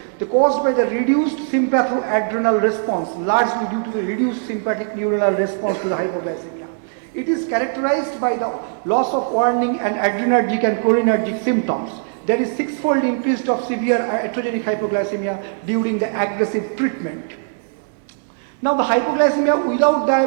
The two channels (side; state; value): left; silent; digital silence